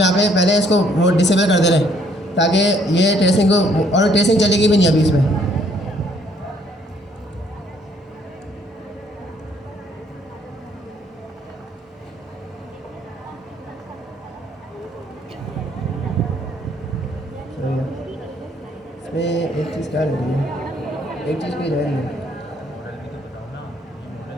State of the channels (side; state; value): both; normal; correlation 0.64